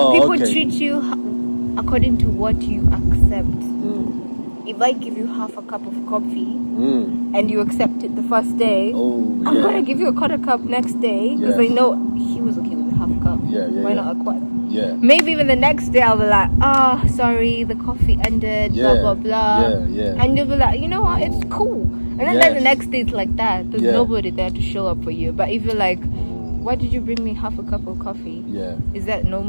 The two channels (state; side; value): inverted; both; correlation -1.00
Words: People okay. treat you according to what you accept. If I give you half a cup of coffee and you accept it the first day, I'm gonna give you a quarter cup next day because I know he was okay with the half cup. Why not a quarter? Yeah. Maybe even the next day I'll be like, sorry, the coffee ended, blah blah blah. And you'll be like, you know what, it's cool. And then the next day it's like that. There's nobody there to show up for you. But if you're like, why did you bring me half a cup of coffee? Is that no